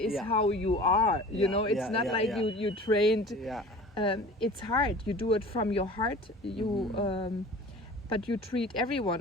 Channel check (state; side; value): normal; both; correlation 0.41